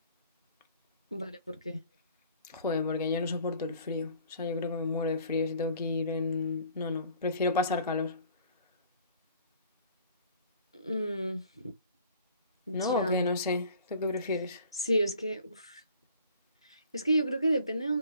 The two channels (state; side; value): inverted; both; correlation -0.53